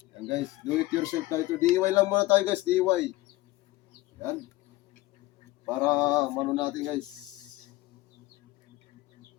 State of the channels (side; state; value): right; quieter; 18.7 dB